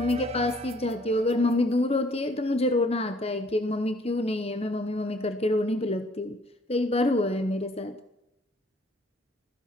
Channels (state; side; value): normal; both; correlation 0.60